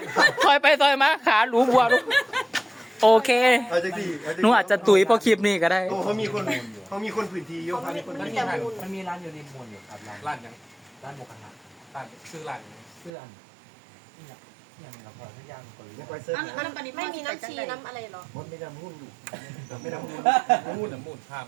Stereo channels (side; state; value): left; drops out; at 13.1 s